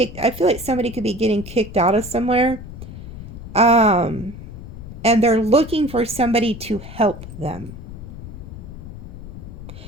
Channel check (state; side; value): noise; left; rumble, 12 dB below the sound